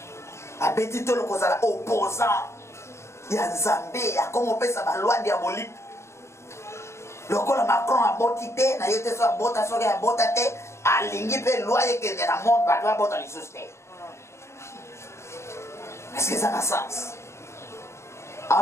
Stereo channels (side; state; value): right; late; 0.13 ms